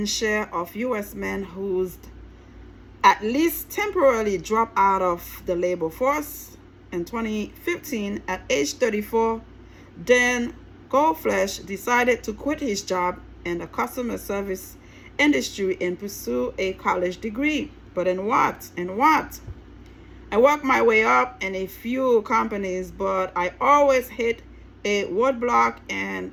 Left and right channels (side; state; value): both; identical; correlation 1.00